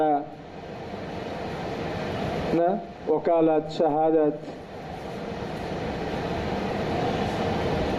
না, ওকালাত, শাহাদাত,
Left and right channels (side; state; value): both; identical; correlation 1.00